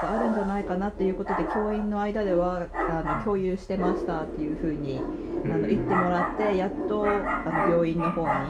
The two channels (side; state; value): both; identical; correlation 1.00